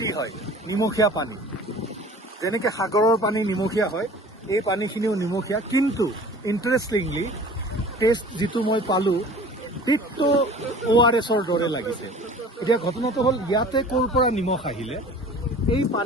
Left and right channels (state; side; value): normal; both; correlation 0.44